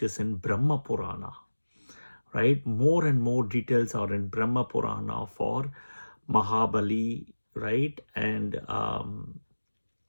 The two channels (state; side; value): inverted; both; correlation -1.00